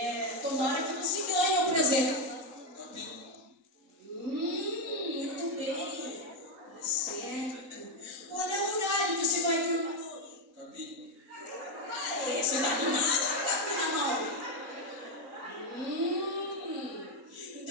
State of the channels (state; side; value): late; left; 4.4 ms